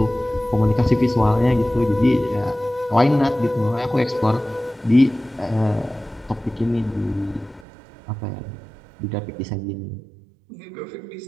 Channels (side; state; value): left; drops out; at 7.7 s